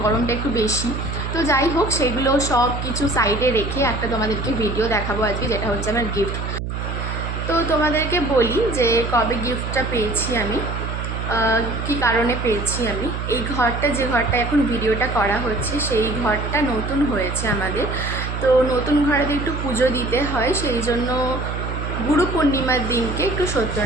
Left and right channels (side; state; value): right; noise; hum, 4 dB below the sound